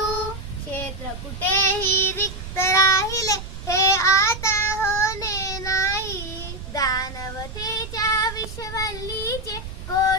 क्षेत्र कुठेही रिक्त राहिले हे आता होणे नाही. दानवतेच्या विश्ववल्लीचे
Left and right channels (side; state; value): right; noise; rumble, 10 dB below the sound